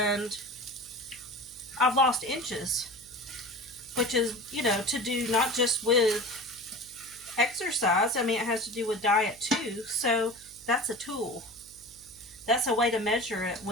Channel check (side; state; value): right; noise; hum, 25 dB below the sound